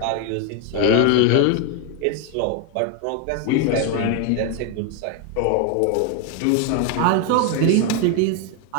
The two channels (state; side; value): different; both; correlation 0.01